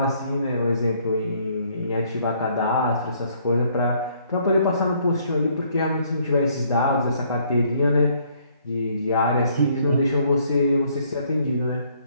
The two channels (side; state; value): both; inverted; correlation -0.65